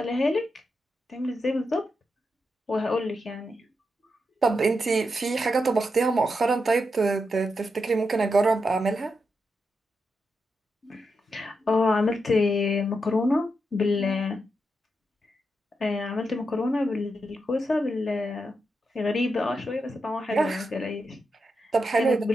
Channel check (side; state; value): both; normal; correlation 0.85